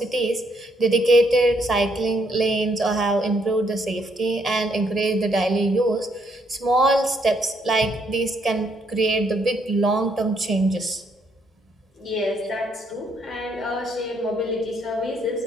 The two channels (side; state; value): both; normal; correlation 0.72